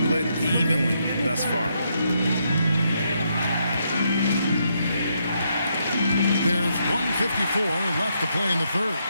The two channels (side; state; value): both; inverted; correlation -0.78